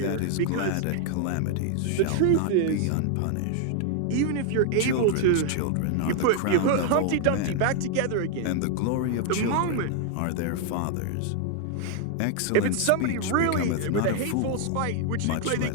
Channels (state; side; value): different; both; correlation 0.00